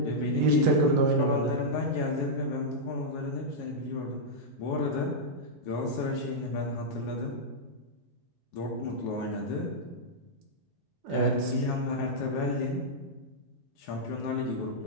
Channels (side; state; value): both; normal; correlation -0.07